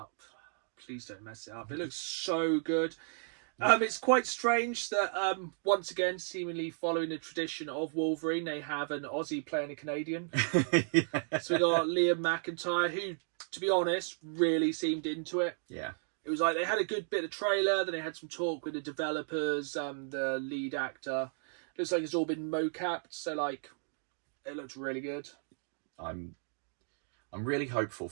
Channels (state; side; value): silent; left; 55 dB below the other